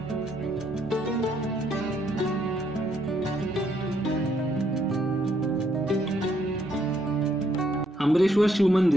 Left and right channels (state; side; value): normal; both; correlation 0.72